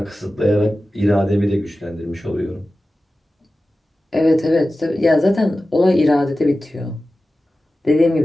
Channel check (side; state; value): both; normal; correlation 0.95